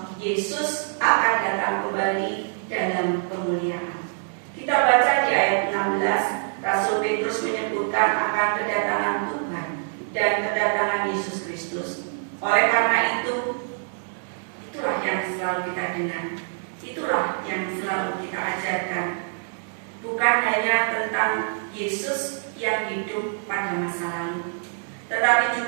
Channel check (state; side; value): silent; left; 62 dB below the other